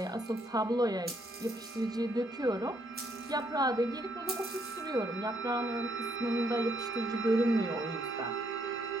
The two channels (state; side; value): normal; both; correlation 0.72